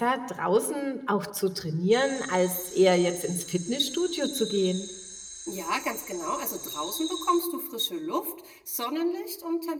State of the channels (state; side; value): identical; both; correlation 1.00